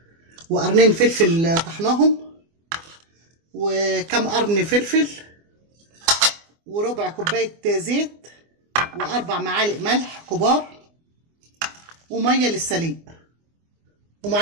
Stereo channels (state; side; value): late; left; 24 ms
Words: وقرنين فلفل طحناهم، وكم قرن فلفل، وربع كوبايه زيت، واربع معالق ملح كبار، وميه للسليق.